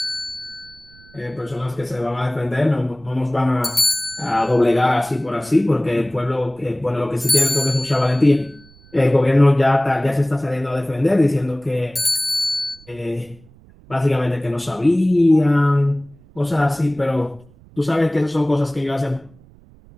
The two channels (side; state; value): right; noise; rumble, 26 dB below the sound